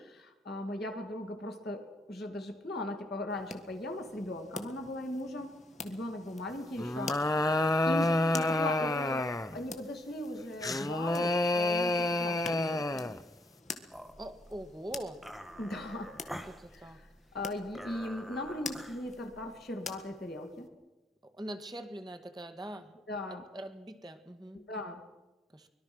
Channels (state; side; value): normal; both; correlation 0.72